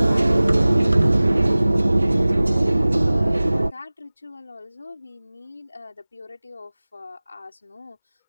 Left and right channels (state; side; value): inverted; both; correlation -0.99